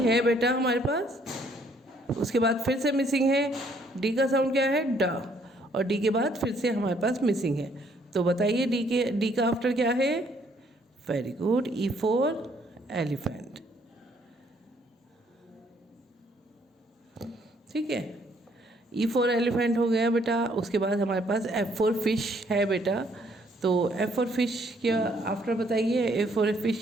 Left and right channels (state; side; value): normal; both; correlation 0.66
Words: है बेटा हमारे पास। उसके बाद फिर से मिसिंग है, डी का साउंड क्या है? डा, और डी के बाद फिर से हमारे पास मिसिंग है। तो बताइए डी का आफ्टर क्या है? Very good, E for elephant, ठीक है, ई फॉर एलिफेंट हो गया बेटा। उसके बाद हमारे पास एफ फॉर फिश है बेटा। तो एफ फॉर फिश क्या आफ्टर बताइए? एफ फॉर फिश